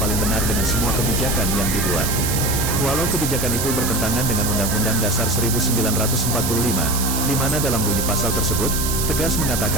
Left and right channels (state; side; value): noise; right; hiss, 2 dB below the sound